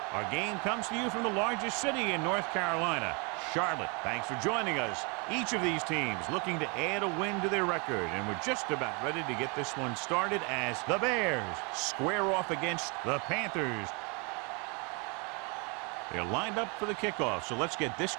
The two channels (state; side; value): quieter; left; 32.0 dB